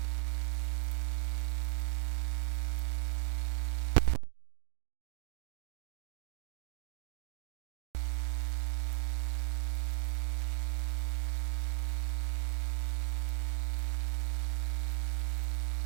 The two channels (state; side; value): silent; left; digital silence